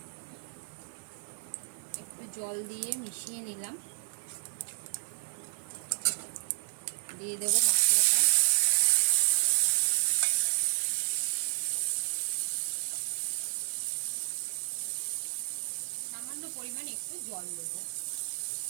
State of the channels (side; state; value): left; silent; digital silence